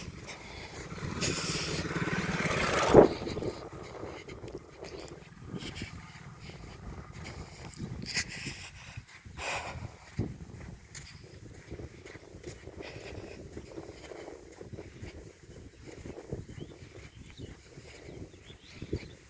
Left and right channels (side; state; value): both; identical; correlation 1.00